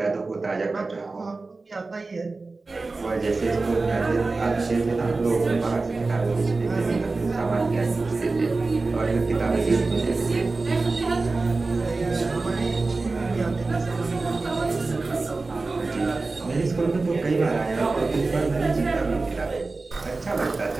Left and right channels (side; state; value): left; quieter; 3.6 dB